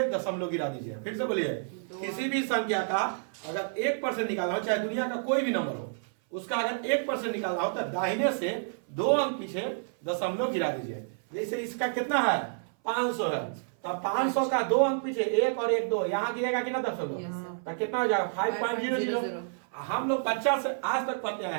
दशमलव गिरा दीजिए। फिर से बोलिए, किसी भी संख्या का अगर 1% निकालना हो, चाहे दुनिया का कोई भी नंबर हो, उसका अगर 1% निकालना हो तो दाहिने से 2 अंक पीछे दशमलव गिरा दीजिए। जैसे इसका कितना है? 500 है, तो 500 का 2 अंक पीछे 1 और 1 2 यहाँ गिरेगा कि ना दशमलव, तो कितना हो जाएगा? 5.00। हम लोग बच्चा से आज तक पढ़ते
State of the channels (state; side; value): silent; left; 57 dB below the other